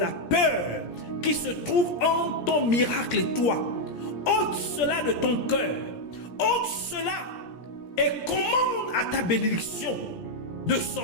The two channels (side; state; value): right; late; 17 ms